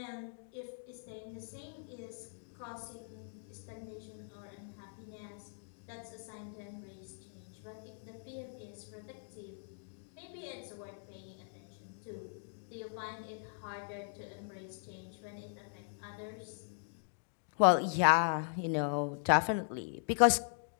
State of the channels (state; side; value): silent; right; digital silence